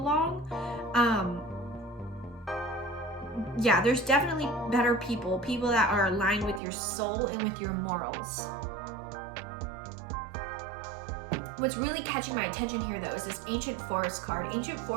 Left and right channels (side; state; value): left; drops out; at 6.6 s